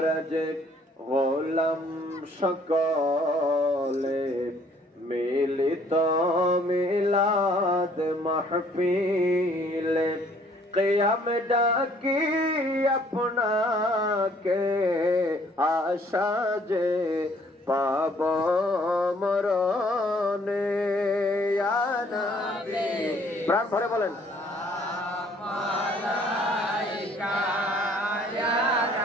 যে গোলাম সকলে মিলিত মিলাদ মাহফিলে কিয়াম ডাকি আপনাকে আশা যে পাব মরণে ইয়া নবী প্রাণ ভরে বলেন মালাইকা ইয়া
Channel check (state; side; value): normal; both; correlation 0.61